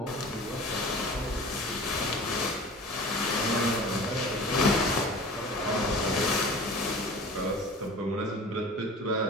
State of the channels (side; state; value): both; normal; correlation 0.39